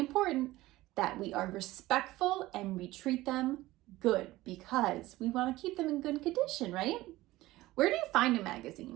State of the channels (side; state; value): left; quieter; 17.7 dB